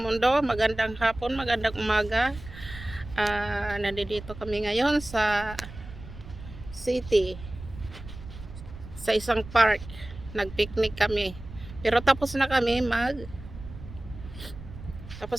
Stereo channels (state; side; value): noise; right; rumble, 14 dB below the sound